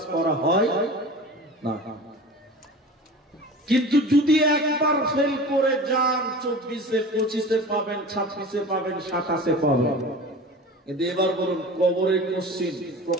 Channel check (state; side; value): normal; both; correlation 0.36